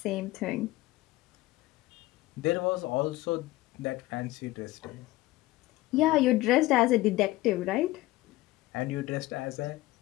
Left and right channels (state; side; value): quieter; right; 18.2 dB